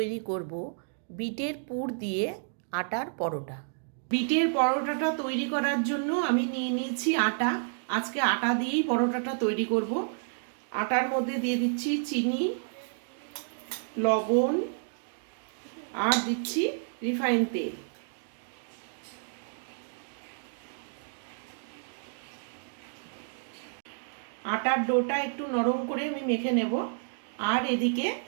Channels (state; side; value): silent; left; digital silence